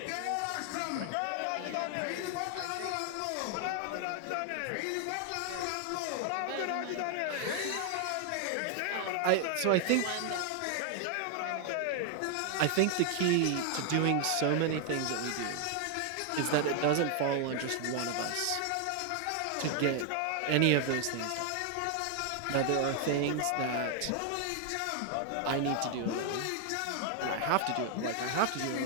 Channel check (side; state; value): both; different; correlation 0.00